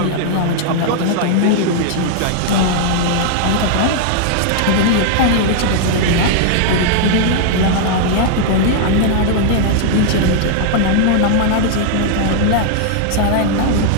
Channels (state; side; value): different; both; correlation -0.01